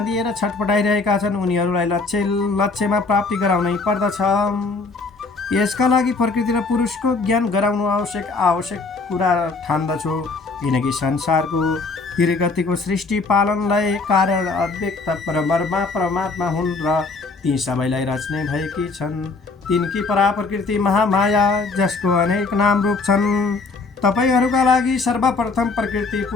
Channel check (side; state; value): right; quieter; 3.9 dB